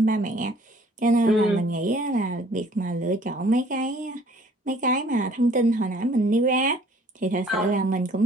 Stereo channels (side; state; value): both; normal; correlation 0.56